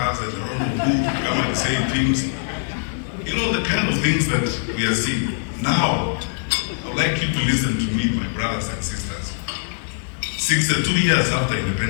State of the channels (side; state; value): right; silent; 64 dB below the other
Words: and I don't know who come and say things. The kind of things that we are seeing. Now, I would like you to listen to me, my brothers and sisters. 62 years after